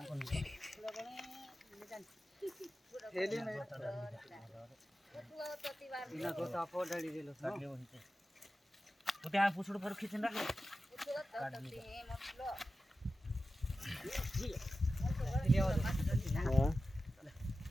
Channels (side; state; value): both; normal; correlation 0.93